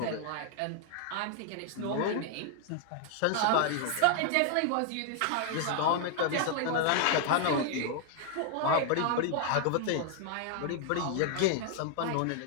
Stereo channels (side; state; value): both; different; correlation 0.00